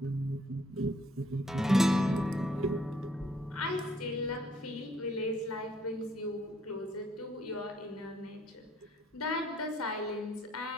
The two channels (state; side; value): normal; both; correlation 0.65